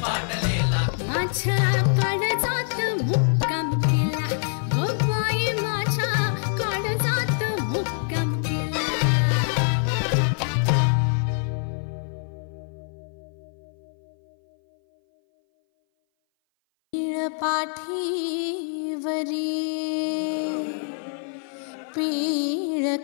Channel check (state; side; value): silent; right; 58 dB below the other